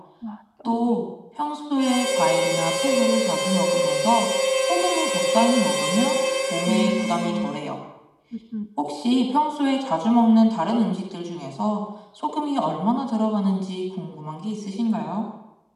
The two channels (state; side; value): identical; both; correlation 1.00